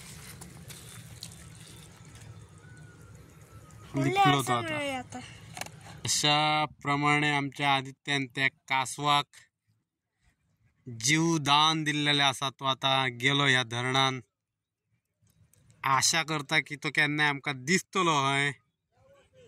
लिपलो तो आता अशा प्रमाणे आमच्या आदित्यान त्या कासवाक जीवदान दिल्लेले आसा तो आता गेलो ह्या धरणान आशा करता की तो केन्नाय आमकां दिसतलो हय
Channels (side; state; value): both; identical; correlation 1.00